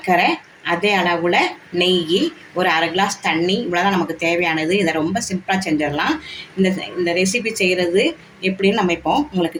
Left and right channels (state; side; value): identical; both; correlation 1.00